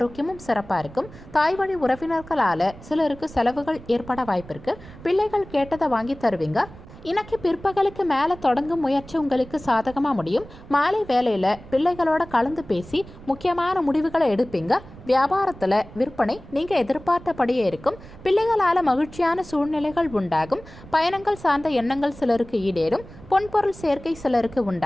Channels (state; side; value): noise; right; rumble, 18 dB below the sound